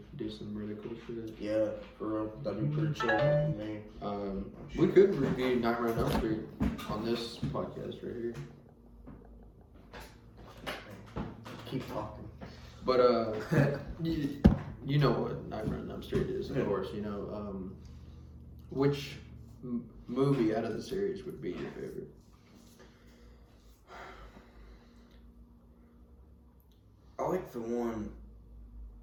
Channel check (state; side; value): identical; both; correlation 1.00